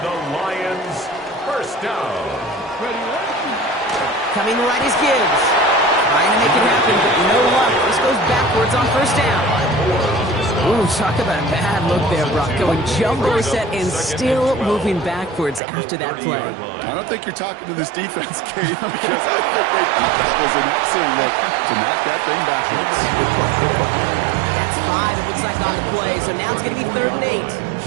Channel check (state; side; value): drops out; left; at 15.6 s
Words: the Lions 1st down. Coming right is Gibbs. Trying to make it happen, but no luck. This goes backwards on 1st down. Ooh, talk about a bad look there, Brock. Going jumbo set and still moving backwards after that play. I don't think you're talking to this defense, Kate, because I think they thought that was an excellent look to knock that thing backwards. Good point, good point. That's 5, it looks like, on the play, so now it's going to be 3rd and 8.